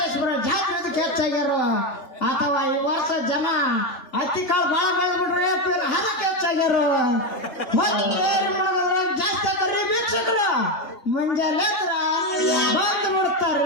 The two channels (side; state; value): right; late; 2.8 ms